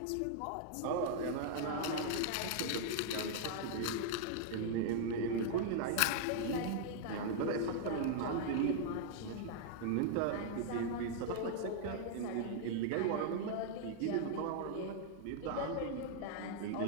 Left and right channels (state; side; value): different; both; correlation -0.01